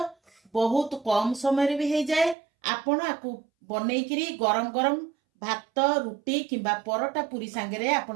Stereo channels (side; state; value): left; drops out; at 2.4 s